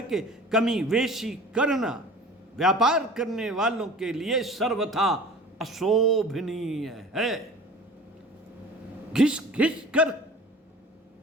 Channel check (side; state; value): both; normal; correlation 0.42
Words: कमी वेशी करना व्यापार करने वालों के लिए सर्वथा अशोभनीय है। घिस कर